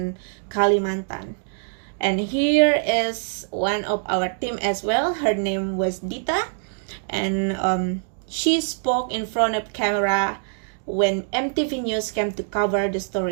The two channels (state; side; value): silent; left; 63 dB below the other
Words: Kalimantan. And here is one of our team as well. Her name was Dita. And she spoke in front of camera when MTV News came to cover the